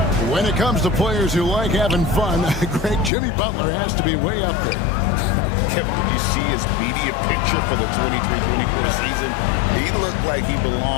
When it comes to players who like having fun, great Jimmy Butler has to be way up there. Kevin, did you see his media picture for the 23-24 season? He looked like he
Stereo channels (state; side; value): drops out; right; at 3.1 s